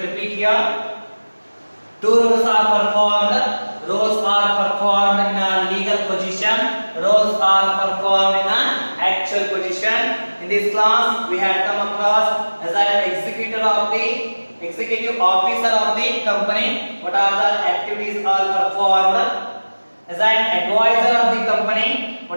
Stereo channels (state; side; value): inverted; both; correlation -1.00